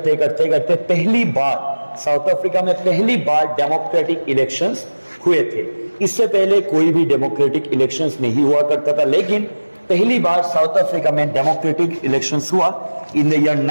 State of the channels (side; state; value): both; inverted; correlation -1.00